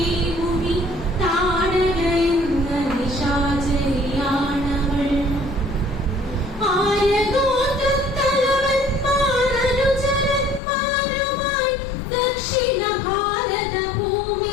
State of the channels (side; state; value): right; drops out; at 10.6 s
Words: മുനി താടക എന്ന നിശാചരിയാണവൾ. ആയഗോത്രത്തലവന്മാരനുചരന്മാരുമായി ദക്ഷിണ ഭാരത